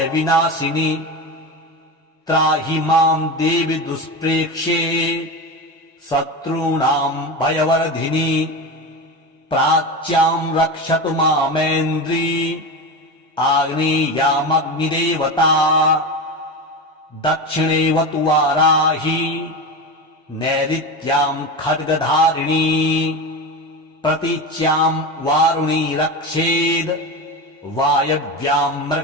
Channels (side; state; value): both; normal; correlation 0.23